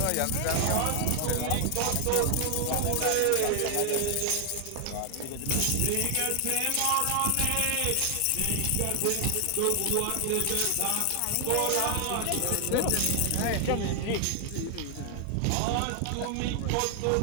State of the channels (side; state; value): both; different; correlation 0.00